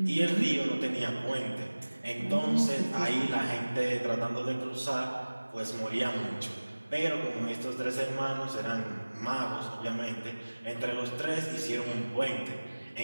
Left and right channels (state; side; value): inverted; both; correlation -1.00